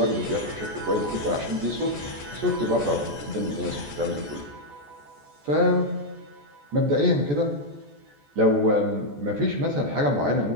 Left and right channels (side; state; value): left; late; 14 ms